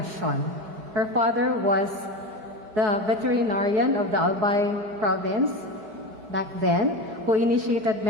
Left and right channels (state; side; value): late; left; 4.7 ms